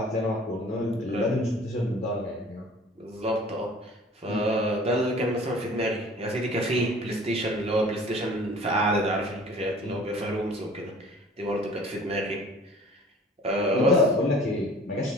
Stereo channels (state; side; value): normal; both; correlation 0.48